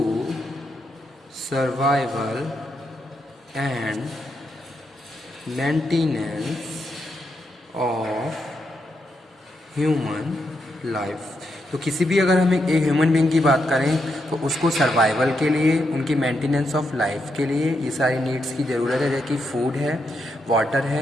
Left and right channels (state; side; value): normal; both; correlation 0.82